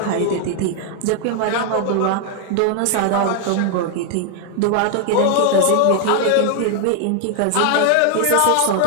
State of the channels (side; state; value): both; different; correlation 0.00